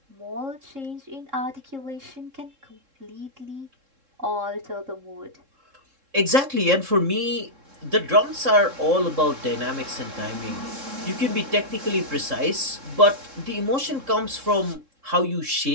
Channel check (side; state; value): left; late; 3.7 ms